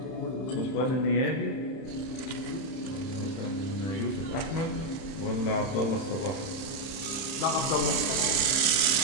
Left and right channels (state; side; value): late; right; 31 ms